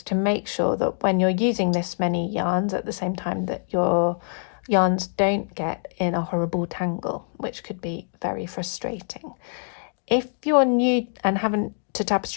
to make sure that when you're using this many yarns at the same time that your yarns don't get in a horrible tangle, which could be very frustrating. If you're new and haven't to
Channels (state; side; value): silent; right; digital silence